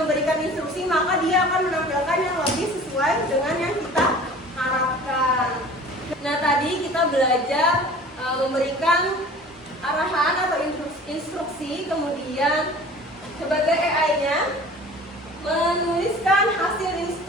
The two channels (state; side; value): normal; both; correlation 0.44